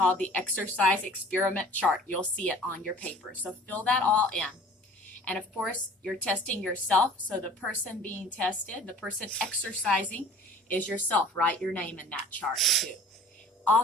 the exercise experiment chart. You'll see it on your paper. So fill that all in. And of course, you're testing yourself. So the person being tested, the person exercising, is yourself. Write your name in that chart too.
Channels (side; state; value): both; normal; correlation 0.47